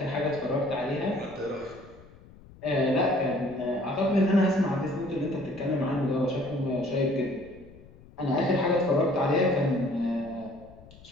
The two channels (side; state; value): left; noise; rumble, 22 dB below the sound